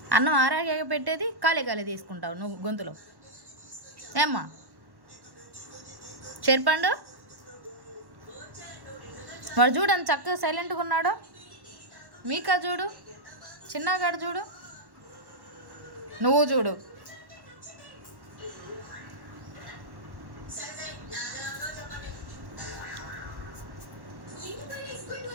అన్నం ఆరాగా పెట్టేది కాలే కాలే తీసుకుంటావు నువ్వు గొంతులో. ఏమ్మా చెరిపండు వాడు చూడు అంత చక్కగా సైలెంట్గా ఉన్నాడు. మీకా చూడు, చిన్నగాడు చూడు, నువ్వు చూడు.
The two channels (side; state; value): left; late; 1.1 ms